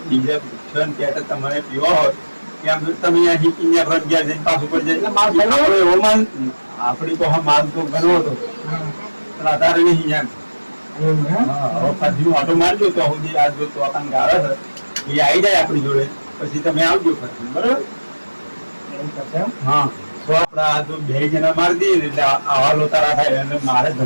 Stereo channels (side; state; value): both; inverted; correlation -1.00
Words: બીજે પેટ તમારે પીવો હોય એમ તમે અહીંયા હિકીને ઘર ગયા જઈને પાછું પડી જાય માલ ઘણો? આપણો એવો માલ આપણી તો હા માલ તો ઘણો હતો પણ અત્યારે નહીં એમ હવે ફરીનું ઓટો મારજો તો સુધી આ જો તો આપણને ગાળે છે એ આવી જાય આપણી જોડે પછી તમે આવજો ફરી બરોબર હા તો આપડા આ જો બે જણા મારી દઈએ ને એટલે આવા લોતારા થાય અને મારે